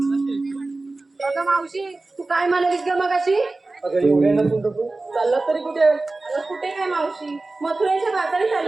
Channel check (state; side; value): quieter; left; 3.3 dB